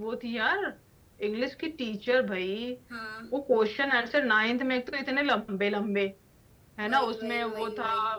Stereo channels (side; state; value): both; identical; correlation 1.00